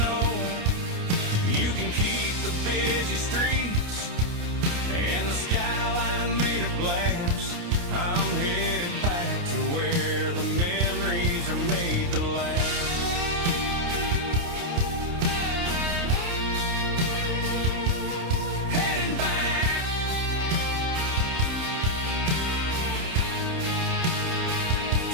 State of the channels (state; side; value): late; left; 29 ms